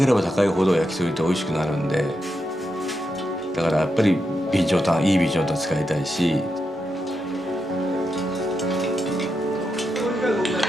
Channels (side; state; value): both; normal; correlation 0.85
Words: れば高いほど焼き鳥って美味しくなるんで、だからやっぱりいい備長炭使いたいし、